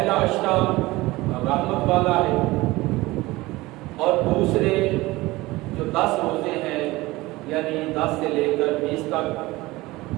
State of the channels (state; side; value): quieter; left; 20.1 dB